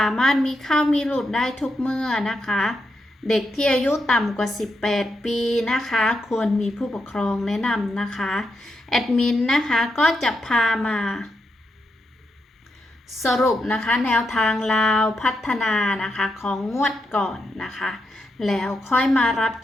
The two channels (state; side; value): normal; both; correlation 0.84